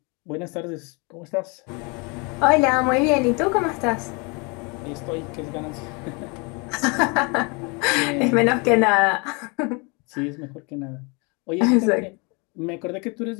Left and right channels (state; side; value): quieter; right; 30.9 dB